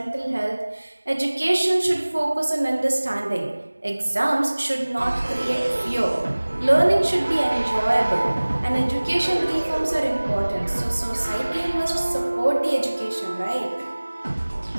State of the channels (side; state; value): both; inverted; correlation -1.00